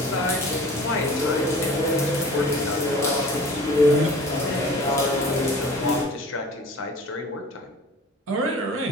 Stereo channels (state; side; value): normal; both; correlation 0.43